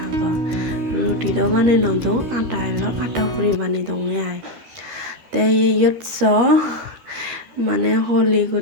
রুটিটাও বানিয়ে নদো আটা এলো আটা ফুরি বানিয়ে দেবো আয় তাই ইয়ৎস মানে হলি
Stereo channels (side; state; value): left; late; 13 ms